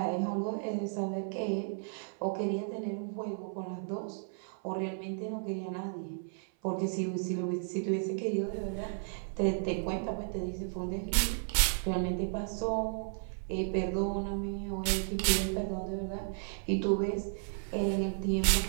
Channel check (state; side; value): silent; left; 55 dB below the other